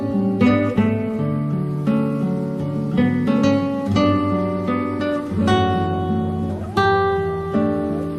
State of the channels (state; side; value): identical; both; correlation 1.00